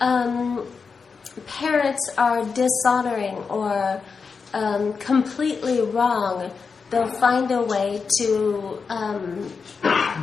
parents are dishonoring or completely wrong, they'll find a way to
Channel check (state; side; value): quieter; right; 5.2 dB